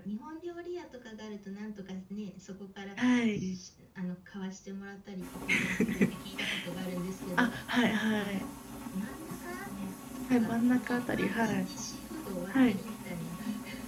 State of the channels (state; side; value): identical; both; correlation 1.00